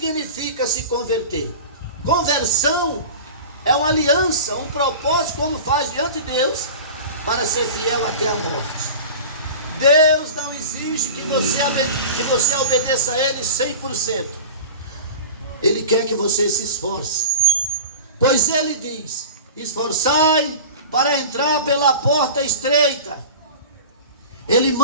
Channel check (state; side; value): inverted; both; correlation -0.33